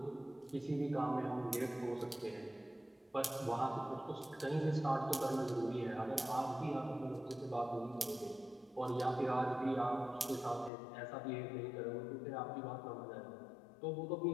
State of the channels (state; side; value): drops out; right; at 10.7 s